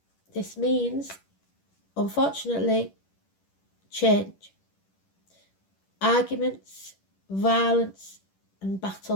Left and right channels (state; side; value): late; right; 10 ms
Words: this means, unfortunately, change. arguments, violence, and